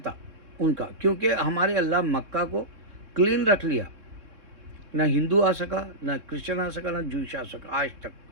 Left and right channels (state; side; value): late; left; 3.6 ms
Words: ان کا، کیونکہ ہمارے اللہ مکہ کو کلین رکھ لیا، نہ ہندو آ سکا، نہ کرسچن آ سکا، نہ جوئش آ سکا، آج تک